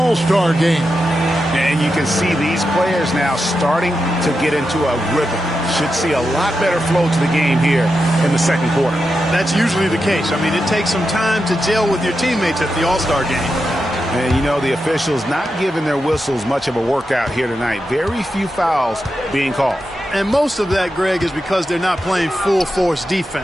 game. And you can see these players now starting to get into a rhythm. Should see a lot better flow to the game here in the second quarter. That's usually the case. I mean, it takes some time to gel with your teammates at the All-Star game. And, you know, the officials not giving their whistles much of a workout here tonight. Very few fouls being called. And most of that, Greg, is because they're not playing full-force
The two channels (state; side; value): normal; both; correlation 0.88